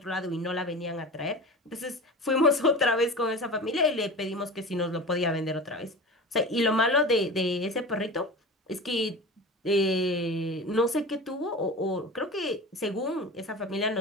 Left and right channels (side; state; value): both; normal; correlation 0.32